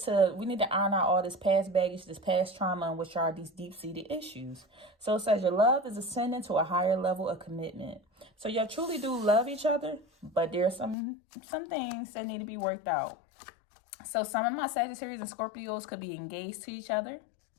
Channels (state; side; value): drops out; right; at 11.0 s